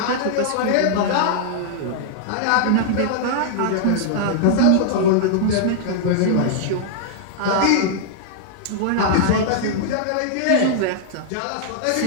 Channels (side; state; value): both; different; correlation -0.01